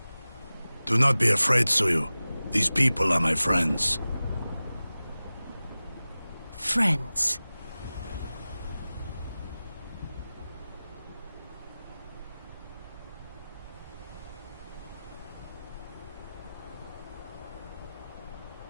Do not be afraid, Suyu. These people are my friends. Friends.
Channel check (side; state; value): both; inverted; correlation -0.96